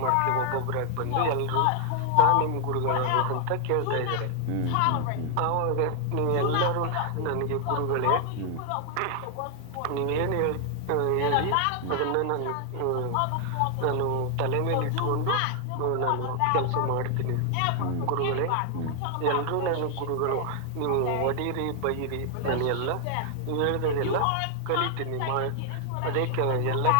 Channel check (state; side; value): different; both; correlation 0.00